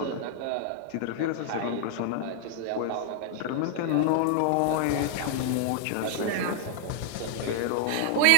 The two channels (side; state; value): both; different; correlation 0.00